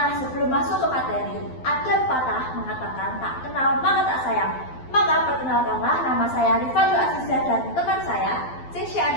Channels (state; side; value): late; right; 12 ms